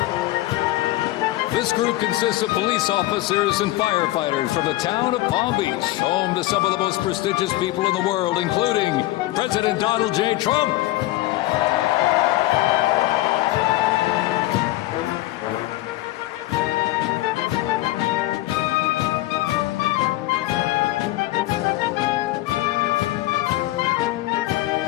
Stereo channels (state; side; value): quieter; right; 17.2 dB